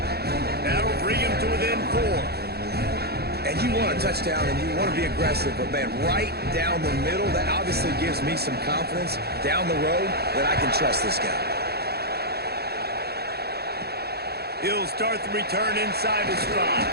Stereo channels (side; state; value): left; late; 0.46 ms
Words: That'll bring him to within 4. And you want a touchdown and you want to be aggressive, but, man, right down the middle, that obviously gives me some confidence down the road that I can trust this guy. He'll start the return inside his stride.